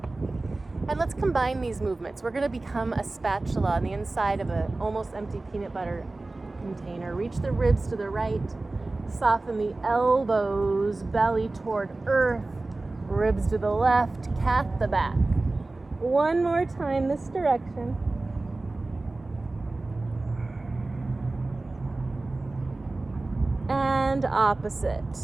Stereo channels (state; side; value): quieter; left; 3.1 dB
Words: And let's combine these movements. We're going to become a spatula on the inside of an almost empty peanut butter container. Reach the ribs to the right. Soften the elbows, belly toward earth. Ribs to the left, cat the back. One more time this direction. And